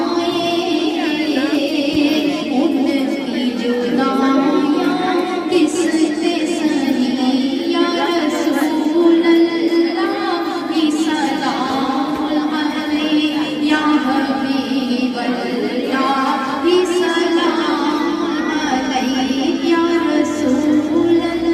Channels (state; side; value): identical; both; correlation 1.00